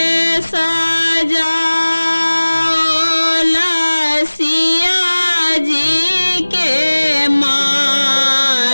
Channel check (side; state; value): both; inverted; correlation -1.00